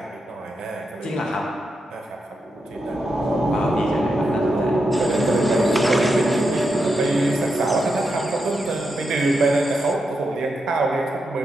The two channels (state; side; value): normal; both; correlation 0.85